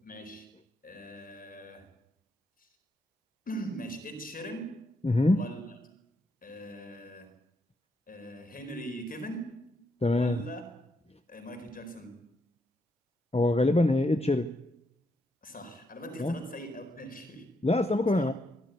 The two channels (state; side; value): normal; both; correlation 0.79